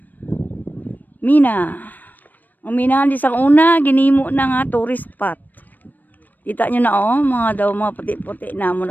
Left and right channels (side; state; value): right; late; 0.086 ms